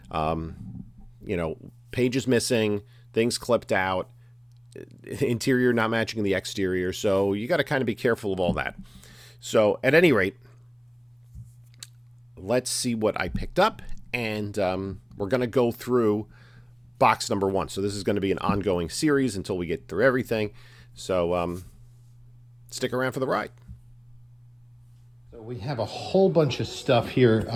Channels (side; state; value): both; identical; correlation 1.00